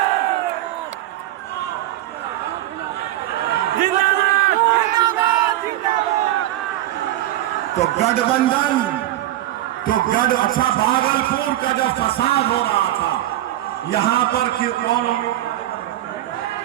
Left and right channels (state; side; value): quieter; left; 14.3 dB